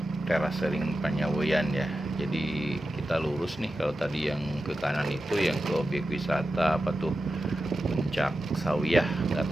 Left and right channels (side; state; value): both; normal; correlation 0.91